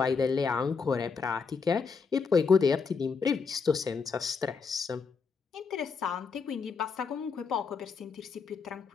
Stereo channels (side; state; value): right; quieter; 5.3 dB